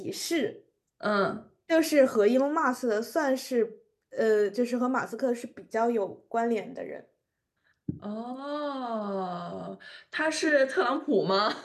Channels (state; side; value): identical; both; correlation 1.00